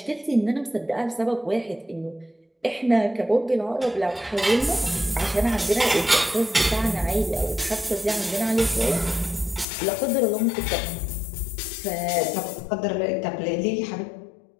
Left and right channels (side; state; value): right; drops out; at 9.7 s